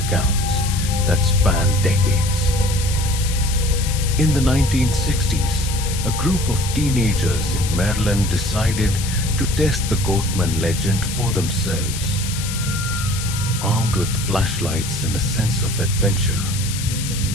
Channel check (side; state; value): left; noise; hiss, 7 dB below the sound